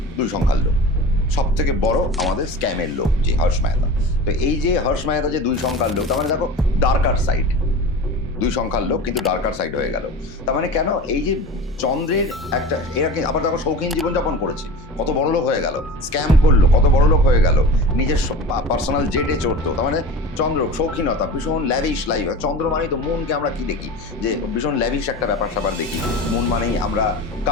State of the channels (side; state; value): both; normal; correlation 0.33